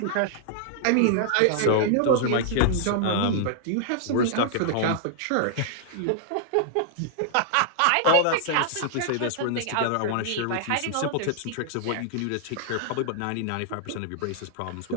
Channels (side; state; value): both; different; correlation -0.01